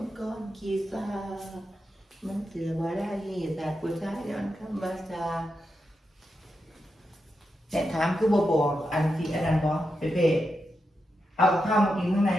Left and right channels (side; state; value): both; normal; correlation 0.87